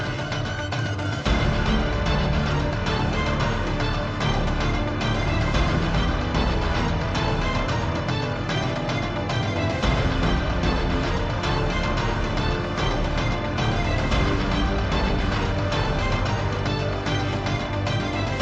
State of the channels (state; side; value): identical; both; correlation 1.00